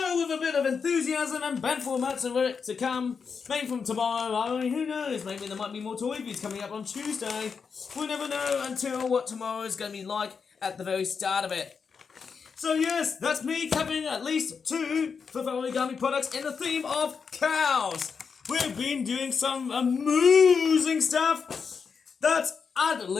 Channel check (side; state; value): right; quieter; 5.8 dB